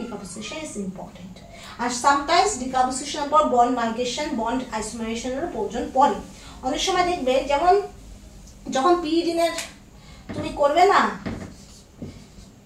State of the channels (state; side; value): identical; both; correlation 1.00